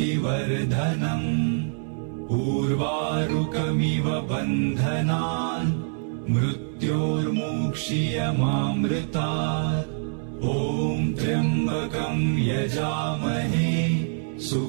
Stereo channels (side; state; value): left; silent; digital silence